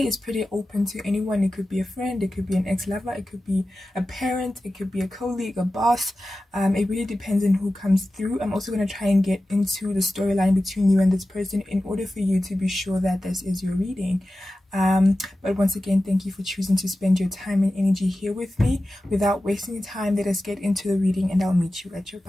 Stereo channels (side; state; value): both; normal; correlation 0.94